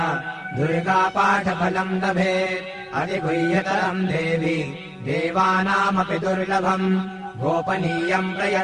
दुर्गापाठफलम् लभेत् अधिगुह्यतरम् देवि देवानामपि दुर्लभम् गोपनीयम्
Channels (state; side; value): identical; both; correlation 1.00